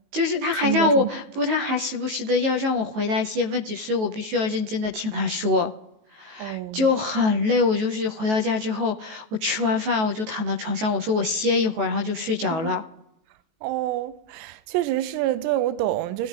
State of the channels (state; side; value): late; left; 19 ms